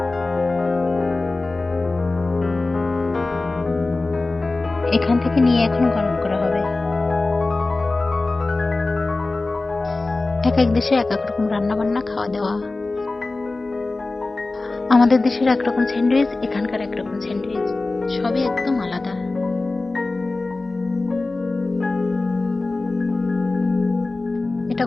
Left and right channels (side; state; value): right; quieter; 3.3 dB